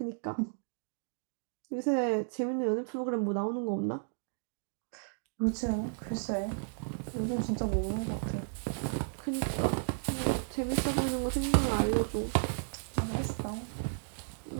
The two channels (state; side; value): silent; left; digital silence